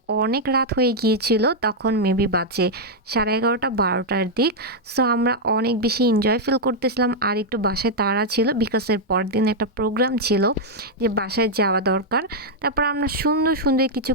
অনেক রাত হয়ে গিয়েছিল, তখন মেবি বাজে 11:30 12টার দিক। সো আমরা অনেক বেশি এনজয় ফিল করতেছিলাম, আর একটু বাসায় তাড়া ছিল বিকজ এর পরদিন একটা প্রোগ্রাম ছিল যে বাসায় যাওয়া দরকার। তারপর আমরা সুন্দর সুন্দর কিছু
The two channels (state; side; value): normal; both; correlation -0.03